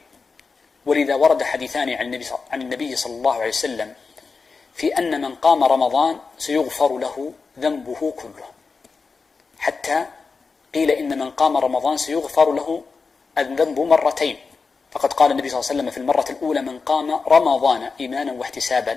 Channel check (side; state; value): right; quieter; 4.6 dB